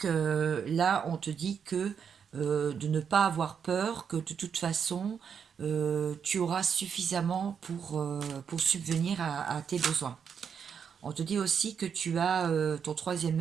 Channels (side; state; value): left; quieter; 7.1 dB